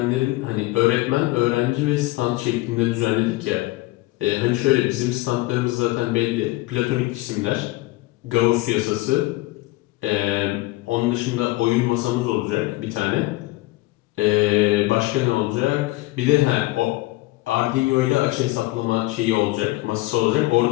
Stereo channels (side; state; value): right; quieter; 19.7 dB